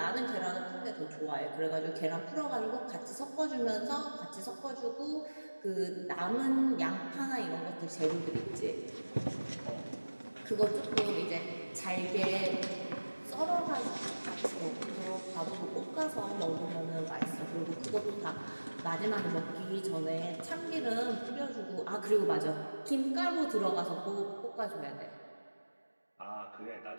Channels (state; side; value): inverted; both; correlation -1.00